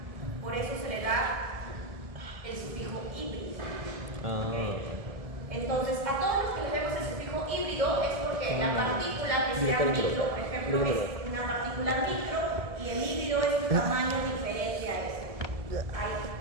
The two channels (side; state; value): left; late; 1.7 ms